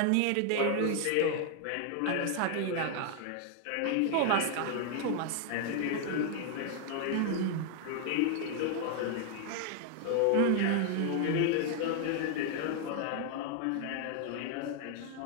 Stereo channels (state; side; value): different; both; correlation 0.00